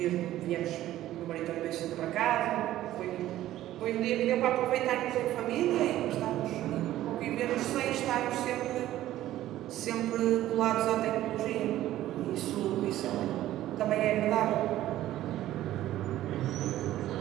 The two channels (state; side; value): quieter; left; 14.0 dB